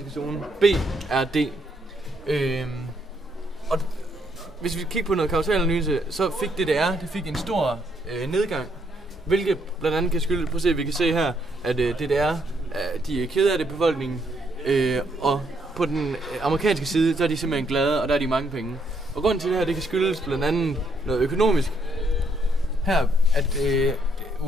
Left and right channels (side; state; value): both; normal; correlation 0.73